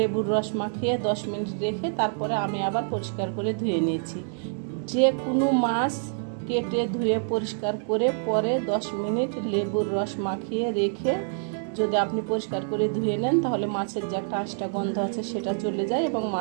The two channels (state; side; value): silent; left; digital silence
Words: রস মাখিয়ে 10 মিনিট রেখে তারপরে আমি আবার পরিষ্কার করে ধুয়ে নিয়েছি। যে কোনো মাছ কেটে ধুয়ে পরিষ্কার করে পরে 10 মিনিট লেবুর রস মাখিয়ে রেখে যদি আপনি পরিষ্কার করে ধুয়ে নেন তাহলে মাছের যে একটা আঁশটা গন্ধ আছে সেটা চলে যায় এবং